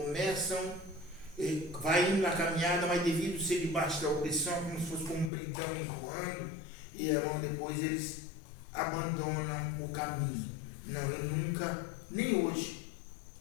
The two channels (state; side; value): drops out; right; at 5.3 s